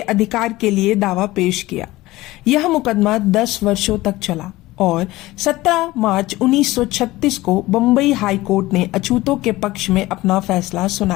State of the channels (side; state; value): right; quieter; 18.4 dB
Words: के लिए दावा पेश किया। यह मुकदमा 10 वर्षों तक चला और 17 मार्च 1936 को बम्बई हाई कोर्ट ने अछूतों के पक्ष में अपना फैसला